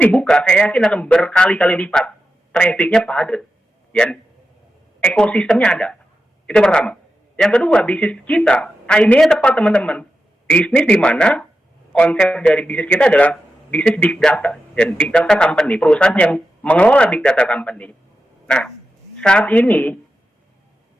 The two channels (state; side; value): normal; both; correlation 0.90